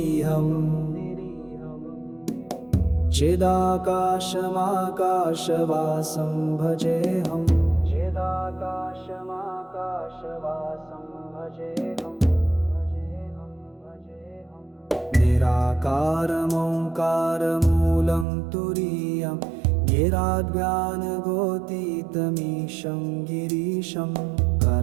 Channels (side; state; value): left; drops out; at 18.2 s